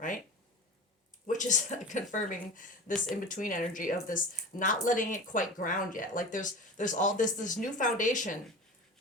Which is confirming this in-between energy of this not letting it quite ground yet. Like there's all this new foundation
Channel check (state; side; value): normal; both; correlation 0.33